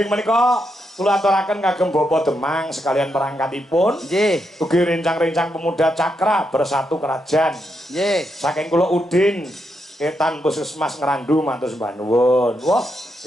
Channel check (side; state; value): both; normal; correlation 0.82